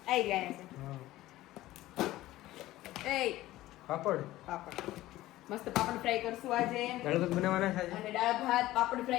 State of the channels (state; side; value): quieter; right; 16.2 dB